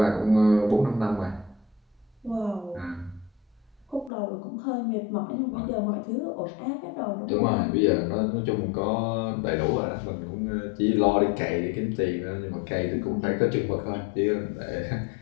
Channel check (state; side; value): drops out; right; at 4.1 s